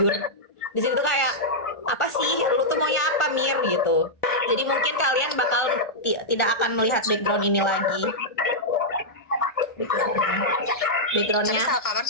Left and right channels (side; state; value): right; late; 1.4 ms